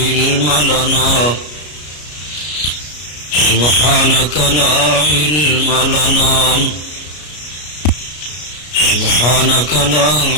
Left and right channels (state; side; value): late; right; 33 ms